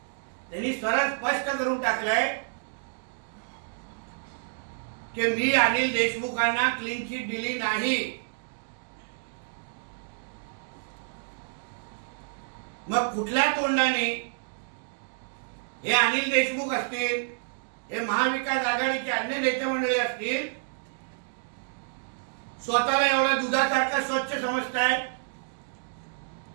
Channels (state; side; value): silent; left; digital silence